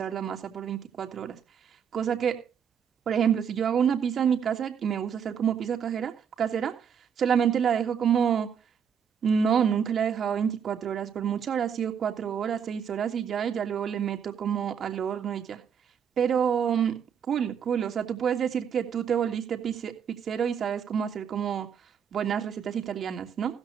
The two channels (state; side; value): quieter; left; 7.7 dB